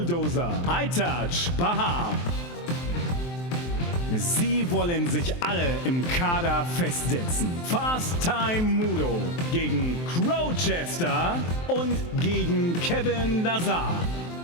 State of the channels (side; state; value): right; late; 23 ms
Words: Aytac Bahar. Sie wollen sich alle im Kader festsetzen. Fast Time Moodo gegen Crowchester und gegen Kevin Lazar.